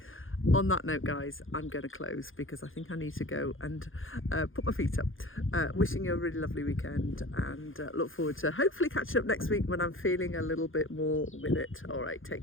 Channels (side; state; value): right; late; 0.59 ms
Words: On that note, guys, I'm going to close because I think I need to go and put my feet up. Wishing you a really lovely weekend, and look forward to hopefully catching up next week when I'm feeling a little bit more with it. All right,